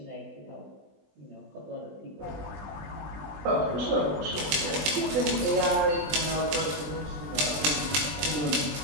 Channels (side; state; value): left; late; 20 ms